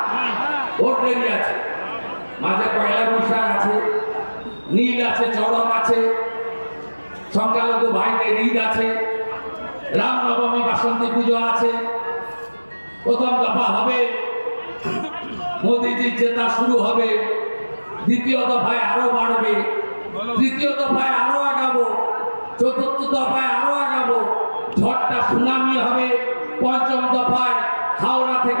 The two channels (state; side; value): inverted; both; correlation -1.00